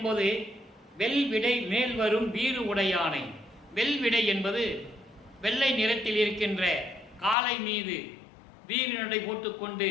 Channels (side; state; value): right; drops out; at 7.4 s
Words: வெல்விடை மேல் வரும் வீறு உடையானை. வெல்விடை என்பது வெள்ளை நிறத்தில் இருக்கின்ற காளை மீது வீறு நடை போட்டுக்கொண்டு